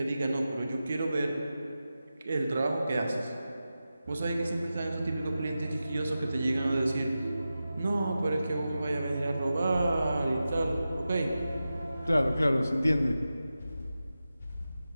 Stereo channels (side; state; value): both; inverted; correlation -0.93